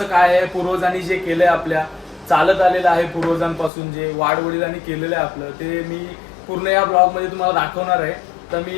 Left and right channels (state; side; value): drops out; right; at 3.7 s